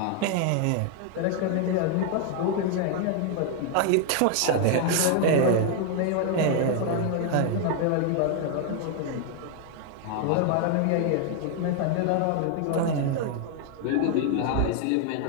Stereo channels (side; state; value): both; different; correlation 0.00